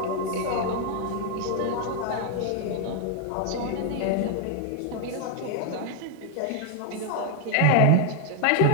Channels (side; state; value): both; different; correlation 0.00